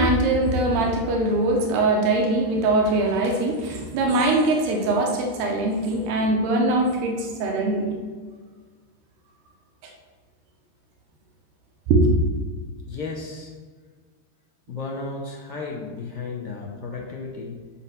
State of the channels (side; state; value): left; late; 13 ms